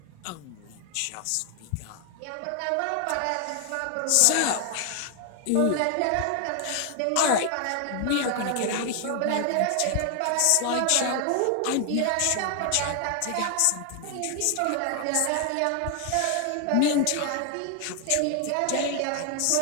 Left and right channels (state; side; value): different; both; correlation 0.00